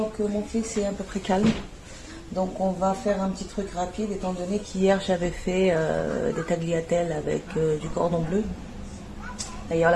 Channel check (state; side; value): identical; both; correlation 1.00